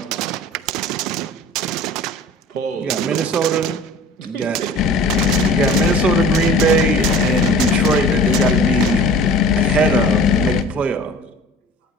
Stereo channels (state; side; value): normal; both; correlation 0.43